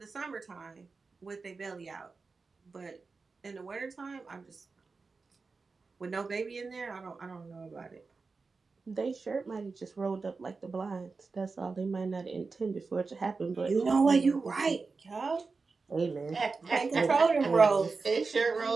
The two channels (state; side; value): quieter; left; 4.3 dB